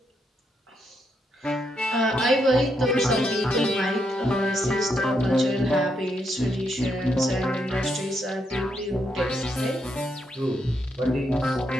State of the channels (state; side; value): normal; both; correlation 0.79